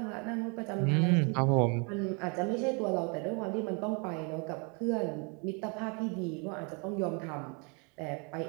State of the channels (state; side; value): quieter; left; 33.9 dB